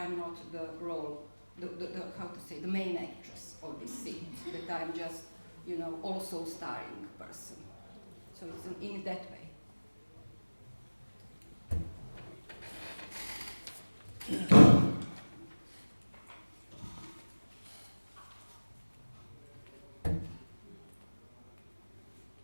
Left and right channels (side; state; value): both; inverted; correlation -1.00